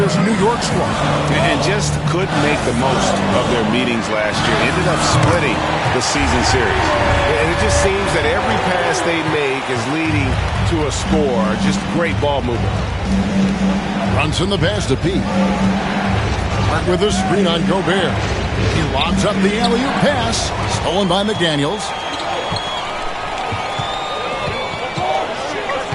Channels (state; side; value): identical; both; correlation 1.00